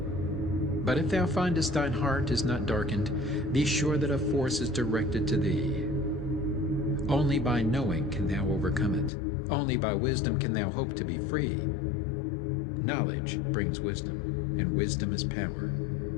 But if thou findest thine heart is not darkened, be sure that a force is directed to thee. Only by knowing can thou overcome it. Only by wisdom can thou hope to be free. Knowledge brings wisdom, and wisdom is power.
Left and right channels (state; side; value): drops out; right; at 9.1 s